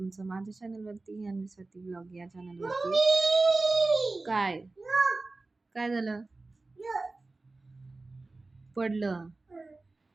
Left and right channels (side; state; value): left; quieter; 3.3 dB